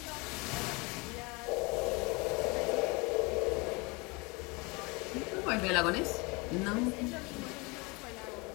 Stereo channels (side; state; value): right; quieter; 27.5 dB